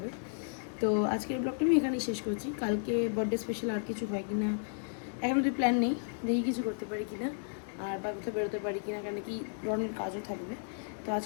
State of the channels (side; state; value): right; silent; digital silence